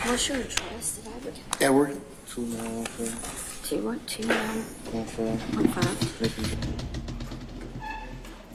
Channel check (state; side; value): identical; both; correlation 1.00